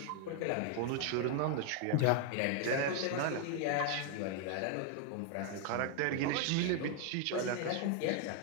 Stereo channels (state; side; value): different; both; correlation 0.00